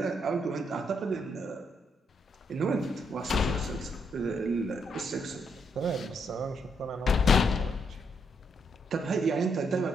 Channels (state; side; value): normal; both; correlation 0.76